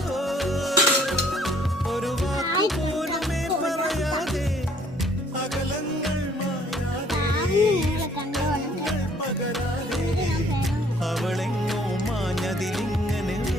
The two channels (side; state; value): both; normal; correlation 0.61